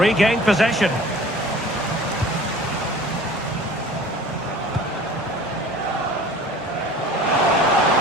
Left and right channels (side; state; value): both; normal; correlation 0.45